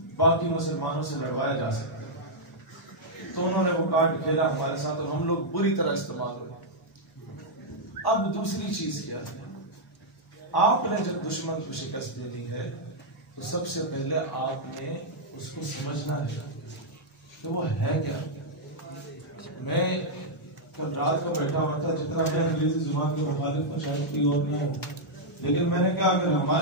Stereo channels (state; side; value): normal; both; correlation -0.05